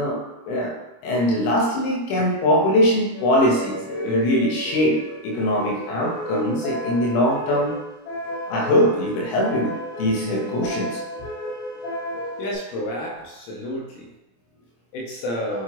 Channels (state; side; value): late; right; 26 ms